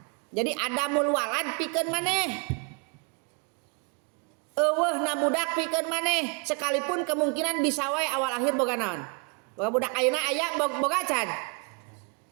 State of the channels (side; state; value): left; quieter; 34.5 dB